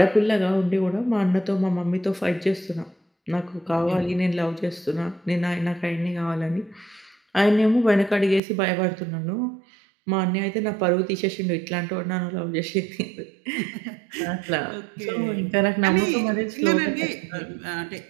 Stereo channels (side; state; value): left; drops out; at 8.4 s